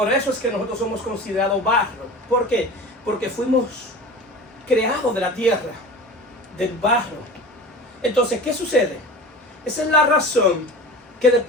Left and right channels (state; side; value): normal; both; correlation 0.35